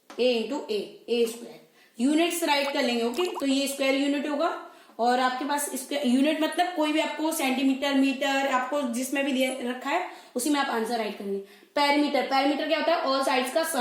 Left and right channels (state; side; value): identical; both; correlation 1.00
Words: A square. Units right कर लेंगे। ओके, तो ये स्क्वायर यूनिट होगा और आपके पास स्क्वायर यूनिट मतलब कोई भी आपको सेंटीमीटर, मीटर, आपको जिसमें भी दिया रखा है उसी में आप आंसर राइट करेंगे। पैरीमीटर, पैरीमीटर क्या होता है, ऑल साइड्स का